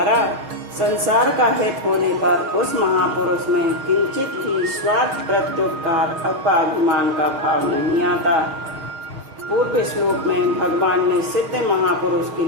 संसार का हित होने पर उस महापुरुष में किंचित भी स्वार्थ, प्रत्युपकार अथवा अभिमान का भाव नहीं आता। पूर्व श्लोक में भगवान ने सिद्ध महापुरुष के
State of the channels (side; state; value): left; late; 6.4 ms